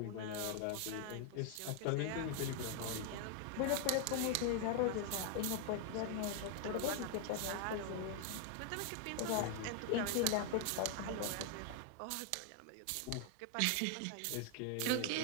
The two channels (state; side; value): different; both; correlation 0.00